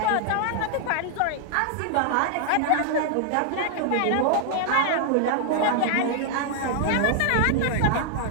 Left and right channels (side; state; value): both; different; correlation 0.00